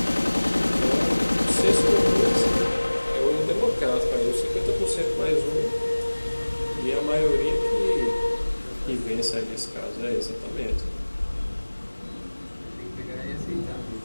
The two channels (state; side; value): inverted; both; correlation -1.00